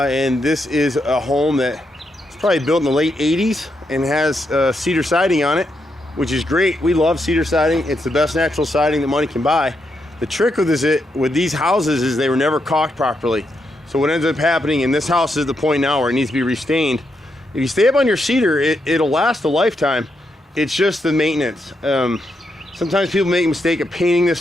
this is a home that was probably built in the late 80s and has cedar siding on it, which is great. We love cedar siding. It's the best natural siding that money can buy. The trick with these houses is they were never caulked properly. So what ends up happening, and this house is the point now where it needs to be restained. If you stay up on your cedar, it'll last a lifetime. It's just the maintenance. Sometimes people make a mistake of painting this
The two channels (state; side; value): normal; both; correlation 0.82